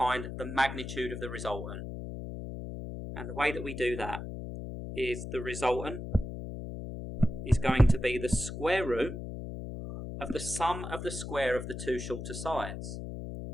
the magnitude of the resultant. And the way that we do that is the resultant is going to be the square root of the sum of the square of the two shorter sides.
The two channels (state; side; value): noise; left; hum, 7 dB below the sound